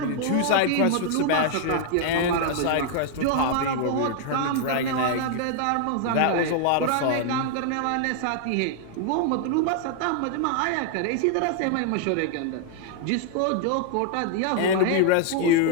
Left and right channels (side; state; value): both; different; correlation 0.00